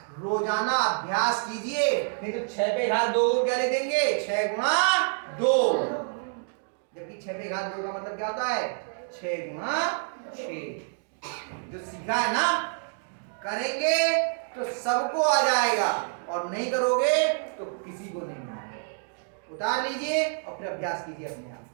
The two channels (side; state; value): left; silent; digital silence